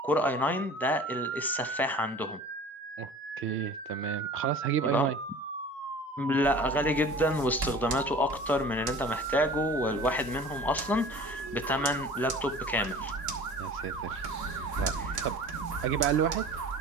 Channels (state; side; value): normal; both; correlation 0.42